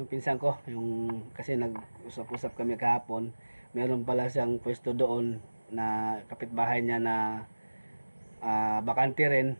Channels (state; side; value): inverted; both; correlation -1.00